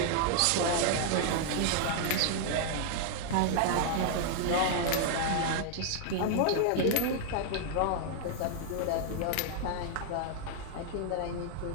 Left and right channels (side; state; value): both; different; correlation 0.00